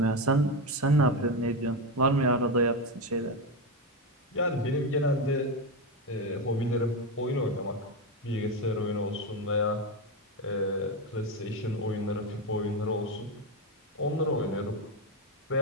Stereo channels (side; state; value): both; normal; correlation 0.13